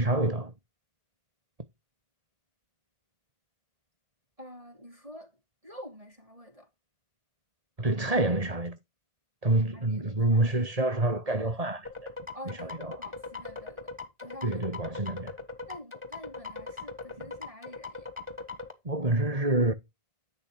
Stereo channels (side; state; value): left; late; 1.8 ms